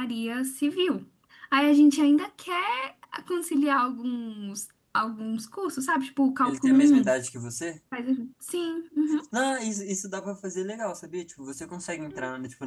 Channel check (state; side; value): identical; both; correlation 1.00